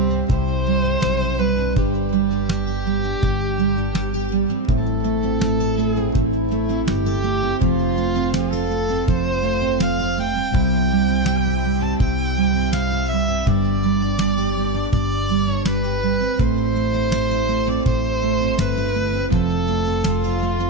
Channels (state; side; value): normal; both; correlation 0.20